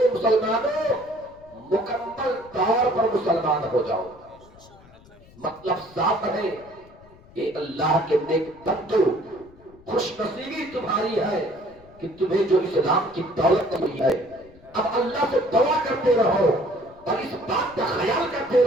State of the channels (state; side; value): noise; left; rumble, 25 dB below the sound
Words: مسلمانوں مکمل طور پر مسلمان ہو جاؤ۔ مطلب صاف ہے کہ اللہ کے نیک بندو، خوش نصیبی تمہاری ہے کہ تمہیں جو اسلام کی دولت ملی ہے، اب اللہ سے دعا کرتے رہو اور اس بات کا خیال کرتے